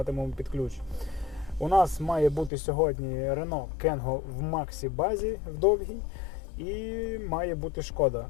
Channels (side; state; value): right; drops out; at 2.5 s